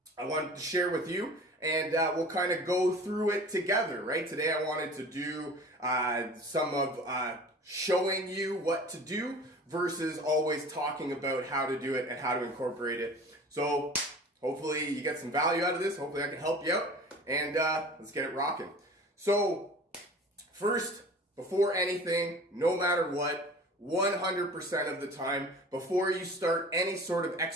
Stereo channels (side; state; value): both; normal; correlation 0.41